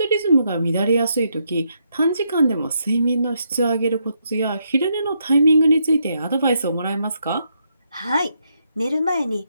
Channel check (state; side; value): inverted; both; correlation -0.78